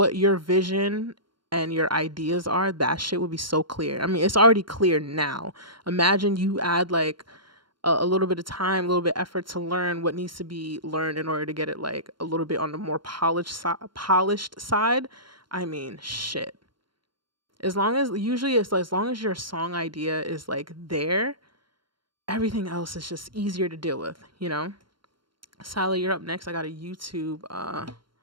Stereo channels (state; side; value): late; left; 0.73 ms